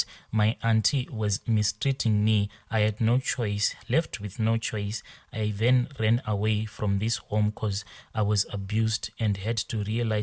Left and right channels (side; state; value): both; identical; correlation 1.00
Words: my auntie was mistreating me, I had no choice. Left with no choice, I then ran away from this home because I was abused and had to